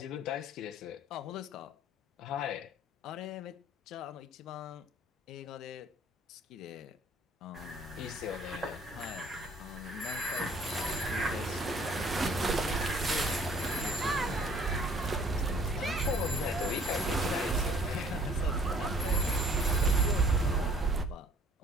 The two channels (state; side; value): normal; both; correlation 0.55